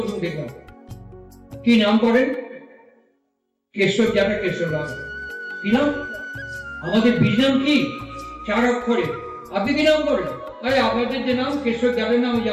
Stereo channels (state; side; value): identical; both; correlation 1.00